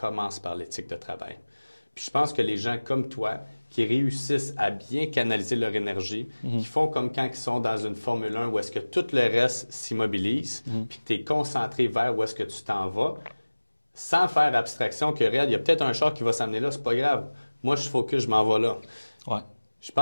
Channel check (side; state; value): both; inverted; correlation -1.00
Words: par l'éthique de travail. Puis je pense que les gens comme toi, qui réussissent à bien canaliser leur énergie, qui font comme quand ils sont dans une Formule 1 où est-ce que tout le reste s'immobilise, puis que tu es concentré vers où est-ce que tu t'en vas, sans faire abstraction que, regarde, il y a peut-être un char qui va s'amener là, c'est pas grave. Moi, je focus, je m'en vais là. Ouais. Je